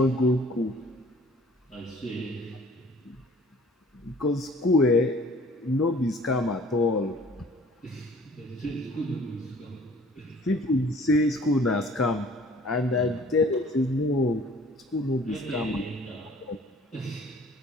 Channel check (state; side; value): normal; both; correlation 0.52